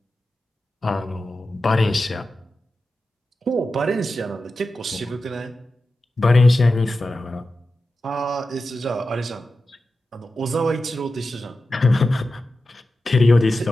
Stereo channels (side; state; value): both; normal; correlation 0.92